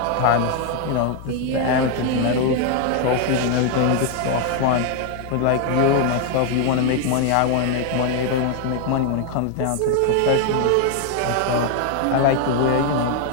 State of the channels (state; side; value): different; both; correlation 0.00